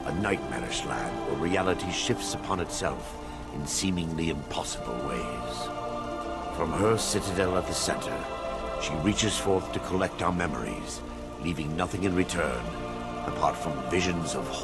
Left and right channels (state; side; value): identical; both; correlation 1.00